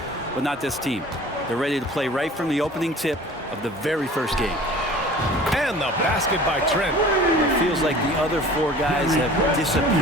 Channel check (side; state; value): both; normal; correlation 0.44